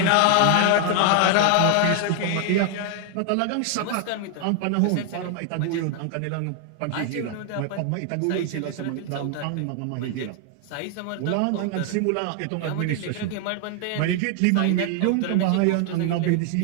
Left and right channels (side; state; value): both; different; correlation 0.00